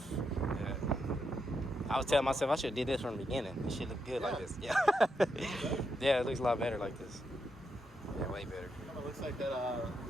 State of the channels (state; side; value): normal; both; correlation 0.82